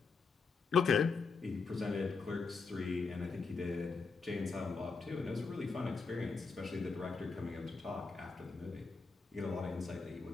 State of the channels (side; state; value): right; quieter; 4.7 dB